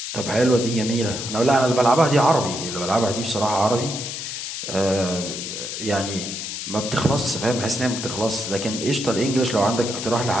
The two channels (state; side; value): noise; left; hiss, 6 dB below the sound